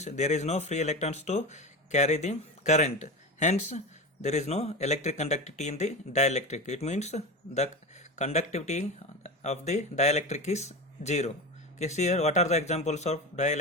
there is no free electrons to carry the current. Hence, there is no electric conductivity in the dielectric. It means the conductivity of the dielectric is zero. Okay, see here what are the examples of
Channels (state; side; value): normal; both; correlation 0.24